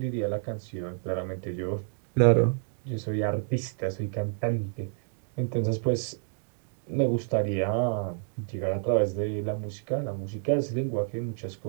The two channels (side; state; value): left; silent; 58 dB below the other